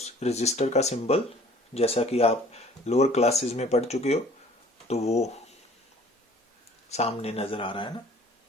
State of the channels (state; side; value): normal; both; correlation 0.52